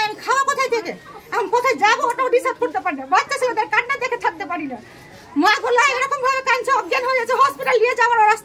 আমি খাওয়া কোথায় থেকে? আমি কোথায় যাবো ওটাও ডিসাইড করতে পারি না। বাচ্চা ছেলেদের কান্না দেখে থাকতে পারি না। মা গোলা এরকম ভাবে কাঁদছে, অজ্ঞান হয়ে যাচ্ছে, হসপিটাল নিয়ে যাওয়ার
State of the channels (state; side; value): identical; both; correlation 1.00